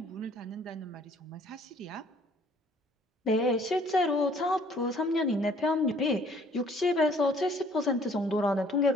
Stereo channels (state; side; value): normal; both; correlation 0.58